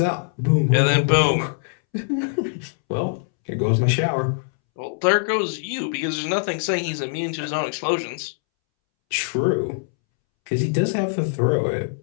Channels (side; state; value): right; silent; 64 dB below the other